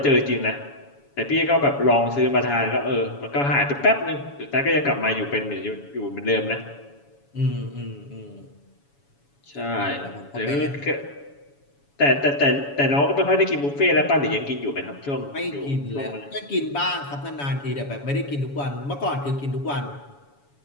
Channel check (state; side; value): late; right; 7.1 ms